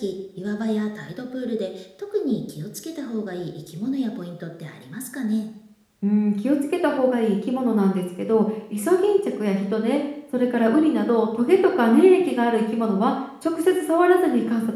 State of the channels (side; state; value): both; identical; correlation 1.00